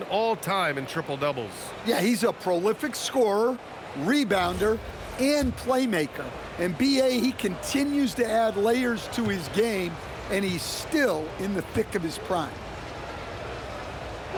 all-time in triple-doubles. Yeah, he's a prolific scorer, rebounder, and playmaker. And B.A., he continues to add layers to his game, and he's still in the thick of his prime.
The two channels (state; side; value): identical; both; correlation 1.00